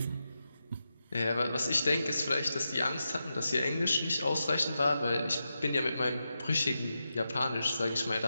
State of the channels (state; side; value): inverted; both; correlation -0.89